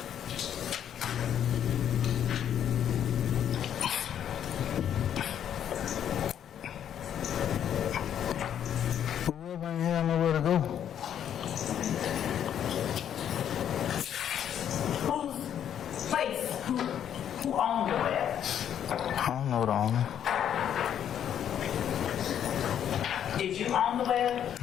Whoever ain't have nowhere to go. Whose place? Who owned the web? I don't know the owner. Did you own the web?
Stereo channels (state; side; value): quieter; right; 9.6 dB